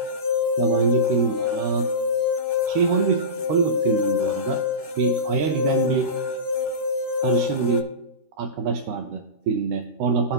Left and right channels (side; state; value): left; late; 13 ms